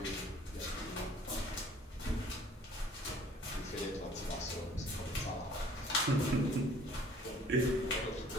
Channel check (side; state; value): both; normal; correlation 0.54